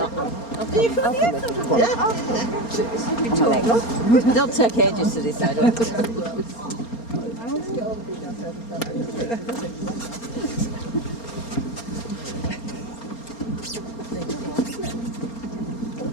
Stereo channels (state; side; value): late; right; 4.3 ms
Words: They'll take ages to decide.